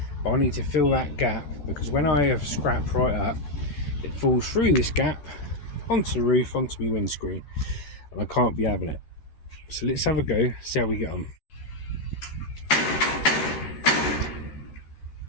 but I need to fill that gap because when I have scrap right up, it falls through this gap onto the roof, onto my windscreen, and I can't be having it. So let's have a go, see how we get on.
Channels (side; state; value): right; late; 14 ms